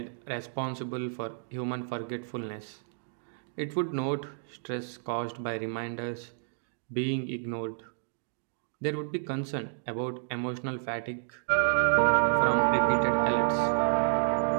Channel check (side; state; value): left; silent; digital silence